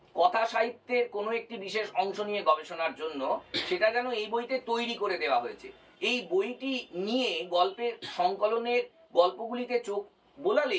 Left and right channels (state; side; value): identical; both; correlation 1.00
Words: কথা সাহিত্যের কোনো একটি বিশেষ অংশ নিয়ে গবেষণার জন্য, সেটা যেন এই বইতে তৈরি করে দেওয়া হয়েছে। এই বইটি নিয়ে গল্পের সংকলনের গল্পগুলিতে চোখ